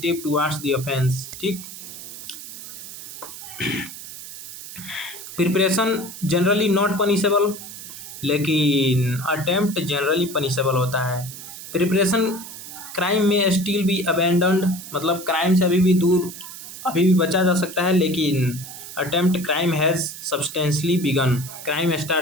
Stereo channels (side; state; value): right; noise; hiss, 12 dB below the sound